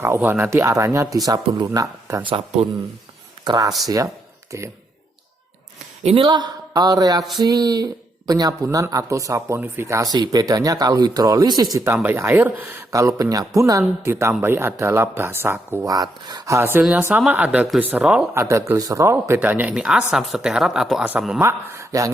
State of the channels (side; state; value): both; normal; correlation 0.78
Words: Nanti arahnya di sabun lunak dan sabun keras ya. Oke. Inilah reaksi penyabunan atau saponifikasi. Bedanya kalau hidrolisis ditambahi air, kalau penyabunan ditambahi adalah basa kuat. Hasilnya sama, ada gliserol, bedanya ini asam stearat atau asam lemak. Yang